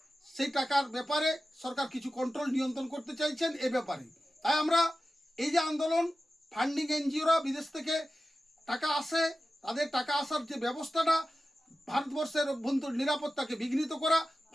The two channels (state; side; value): normal; both; correlation 0.94